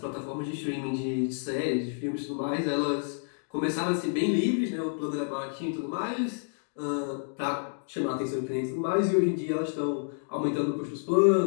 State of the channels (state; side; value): silent; right; digital silence